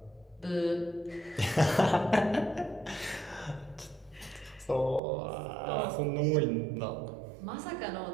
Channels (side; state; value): left; drops out; at 5.0 s